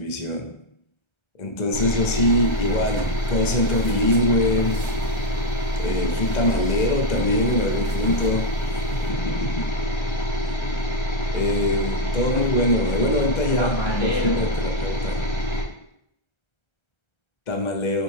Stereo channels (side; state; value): right; late; 1.3 ms